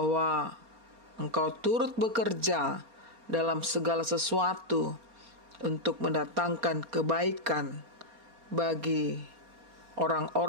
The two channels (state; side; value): late; left; 4.3 ms